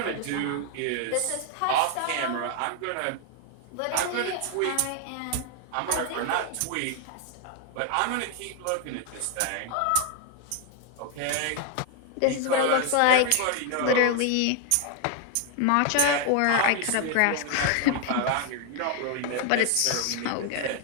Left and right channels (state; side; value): different; both; correlation 0.00